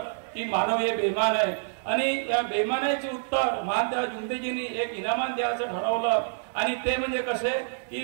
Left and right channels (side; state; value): left; silent; 60 dB below the other